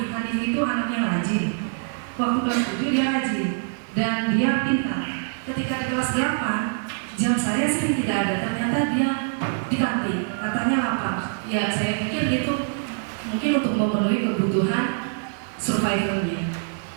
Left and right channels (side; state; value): left; silent; digital silence